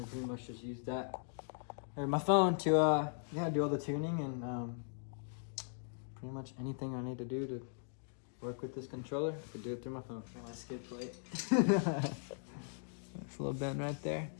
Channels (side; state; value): right; silent; digital silence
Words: I pretty much just use that or my phone to yeah, do all the tuning and pretty much anything I need to do to work with this controller. I could do it through my phone. My skid plate. That's a little bend right there.